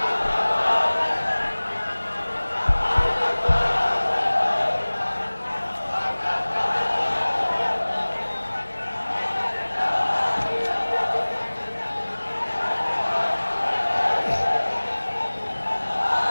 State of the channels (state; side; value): inverted; both; correlation -1.00